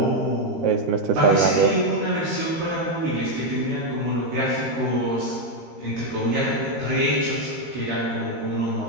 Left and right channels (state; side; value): late; left; 13 ms